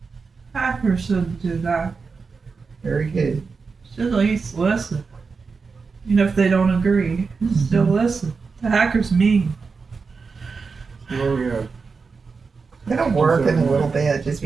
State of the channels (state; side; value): quieter; left; 4.8 dB